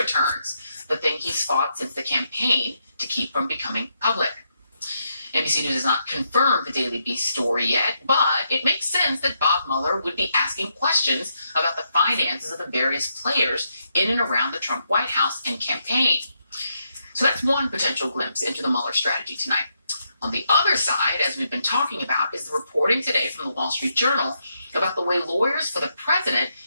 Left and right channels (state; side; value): inverted; both; correlation -0.80